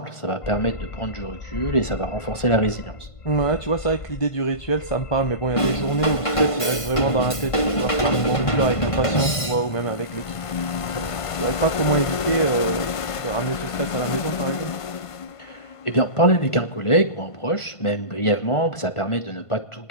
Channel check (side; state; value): right; late; 1.5 ms